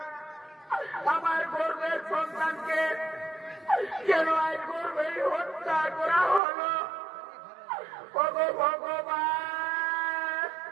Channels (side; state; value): left; drops out; at 6.4 s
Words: আমার গর্ভের সন্তানকে কেন আজ গর্ভেই হত্যা করা হলো? ওগো ভগবান,